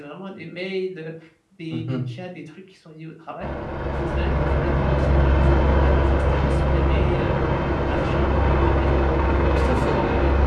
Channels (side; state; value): both; identical; correlation 1.00